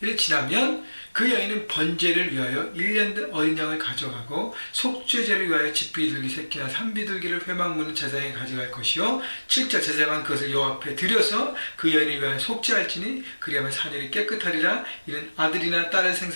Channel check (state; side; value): inverted; both; correlation -1.00